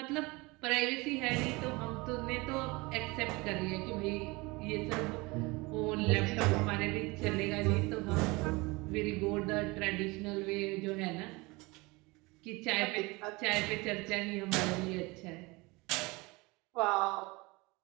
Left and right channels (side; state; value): left; quieter; 24.4 dB